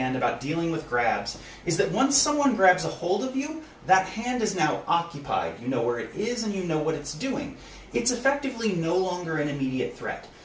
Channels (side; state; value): both; identical; correlation 1.00